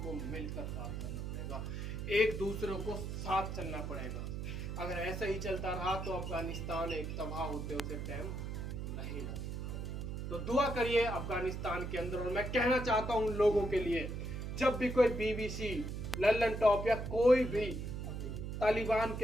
मिलकर काम करना पड़ेगा, एक दूसरे को साथ चलना पड़ेगा। अगर ऐसा ही चलता रहा तो अफगानिस्तान एक तबाह होते उसे टाइम नहीं लगेगा। तो दुआ करिए अफगानिस्तान के अंदर। और मैं कहना चाहता हूं उन लोगों के लिए जब भी कोई BBC, लल्लन टॉप या कोई भी तालिबान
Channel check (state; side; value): noise; right; hum, 5 dB below the sound